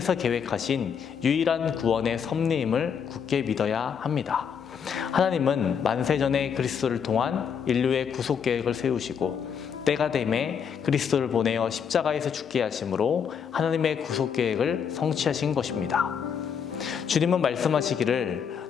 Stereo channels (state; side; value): quieter; right; 7.2 dB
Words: 계획하신 유일한 구원의 섭리임을 굳게 믿어야 합니다. 하나님은 만세전에 그리스도를 통한 인류의 구속 계획을 세우시고 때가 되매 그리스도를 보내어 십자가에서 죽게 하심으로 하나님의 구속 계획을 성취하신 것입니다. 주님은 말씀하시기를